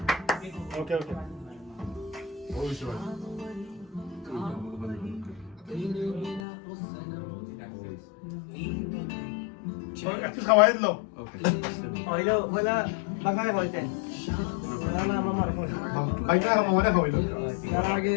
ওকে ওকে ওই সবাই একটু খাওয়াই দিলো হইলো হইলা বাঙালি হইতেন বাইকটা মামাটা খাওয়াইলো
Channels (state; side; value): drops out; right; at 6.4 s